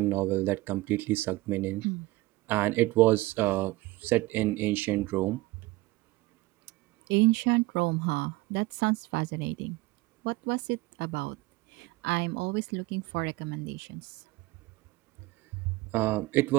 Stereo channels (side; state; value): left; quieter; 20.1 dB